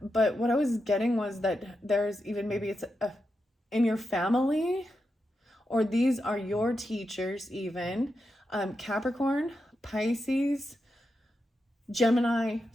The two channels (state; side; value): normal; both; correlation 0.87